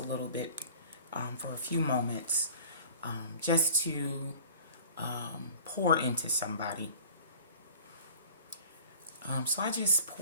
little bit for a few moments just to pour into somebody. So I just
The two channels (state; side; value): inverted; both; correlation -0.46